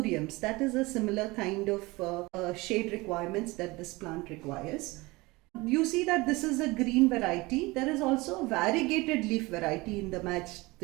that is a similar kind of shade requirements that this plant requires. You see that this is a green variety. There is also a variegated leaf variety in the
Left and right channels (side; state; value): left; quieter; 22.7 dB